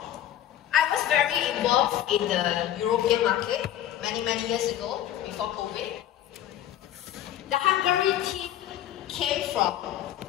I was very involved in the European market many years ago, before COVID. The Hungary team came from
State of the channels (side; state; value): right; quieter; 11.8 dB